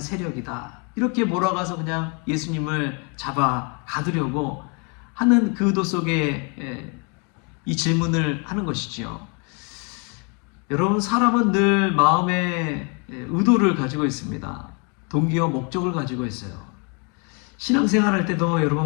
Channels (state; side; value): quieter; right; 34.8 dB